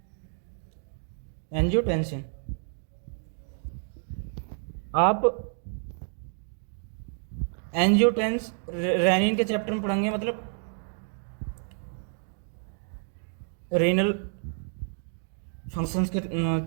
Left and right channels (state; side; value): silent; left; 58 dB below the other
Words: एंजियोटेंसिन। आप रेनिन के चैप्टर में पढ़ेंगे, मतलब रेनल फंक्शंस के